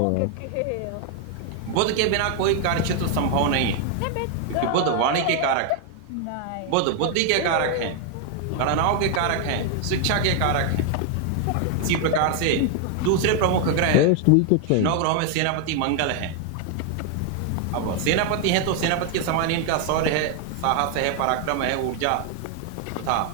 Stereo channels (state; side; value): different; both; correlation 0.00